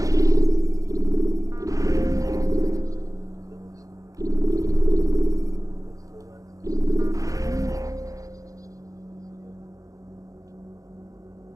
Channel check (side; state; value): left; late; 0.16 ms